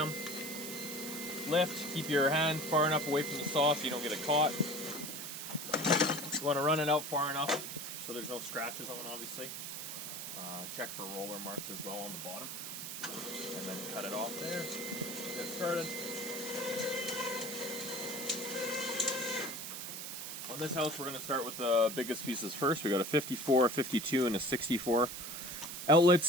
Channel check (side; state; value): right; noise; hiss, 7 dB below the sound